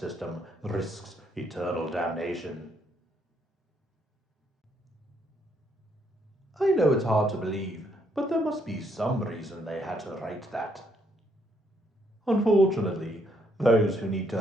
risks eternal damnation. I know it's hard to believe, but there must be some reason they had to write that. Unfortunately, those who need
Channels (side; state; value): both; normal; correlation 0.72